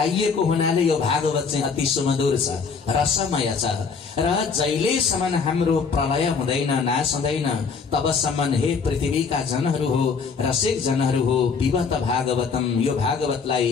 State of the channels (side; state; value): right; quieter; 5.4 dB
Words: हुनाले यो भागवत चाहिँ अति सुमधुर छ, रसमय छ। र जहिलेसम्म हाम्रो प्रलय हुँदैन, नाश हुँदैन, तबसम्म हे पृथ्वीका जनहरू हो, रसिक जनहरू हो, पिबत भागवतम, यो